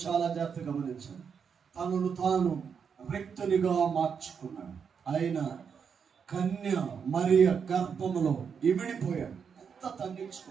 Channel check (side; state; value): left; quieter; 6.6 dB